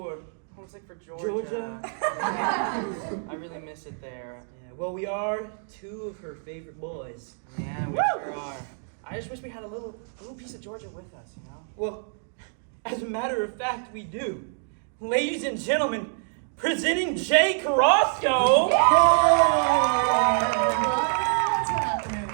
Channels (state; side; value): silent; left; digital silence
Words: Homesick for Georgia. Georgia? I really miss it there. Yeah, well, we are two of her favorite boys. Yeah, we sure are. I just wish we had a little piece of Georgia with us, you know? Well, as a matter of fact, we do. Ladies and gentlemen, presenting Jay Carrasco. What's happening?